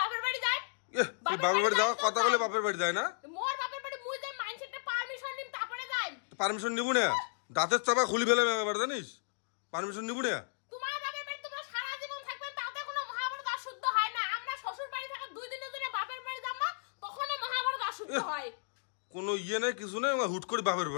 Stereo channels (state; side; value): silent; right; digital silence